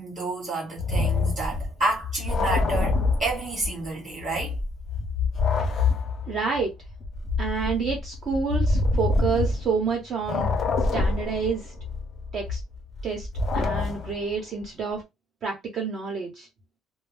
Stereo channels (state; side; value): normal; both; correlation 0.66